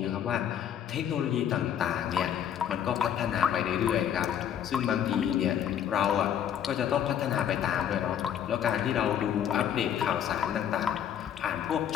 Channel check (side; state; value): right; quieter; 9.4 dB